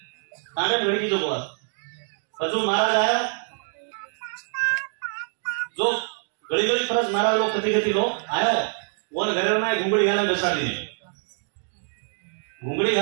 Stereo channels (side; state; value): left; silent; 62 dB below the other